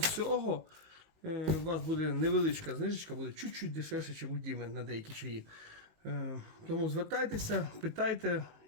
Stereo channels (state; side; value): late; left; 19 ms